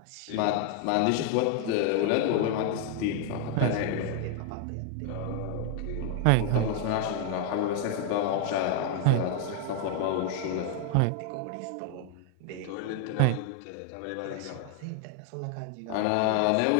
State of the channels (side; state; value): both; different; correlation 0.00